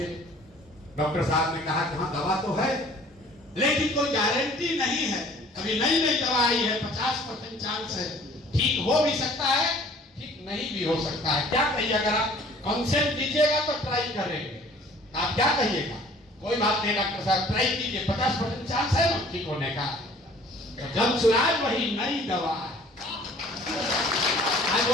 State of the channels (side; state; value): both; normal; correlation 0.52